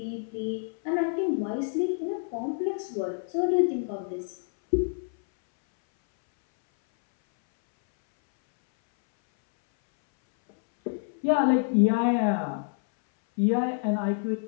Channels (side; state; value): right; silent; 60 dB below the other